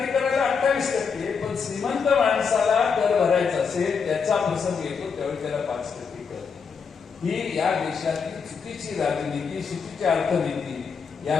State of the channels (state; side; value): quieter; right; 5.8 dB